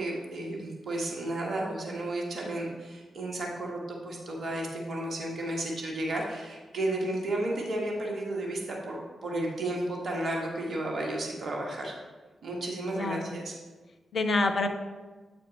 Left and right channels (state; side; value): normal; both; correlation 0.80